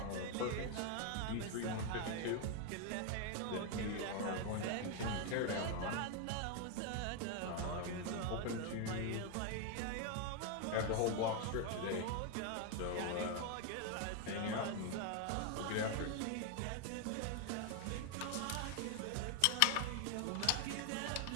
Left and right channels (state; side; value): different; both; correlation 0.01